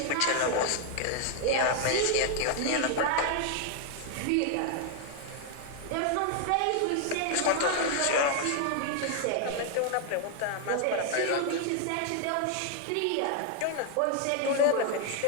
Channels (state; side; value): different; both; correlation 0.00